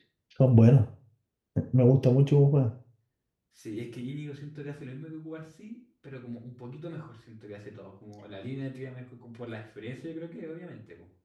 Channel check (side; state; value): both; identical; correlation 1.00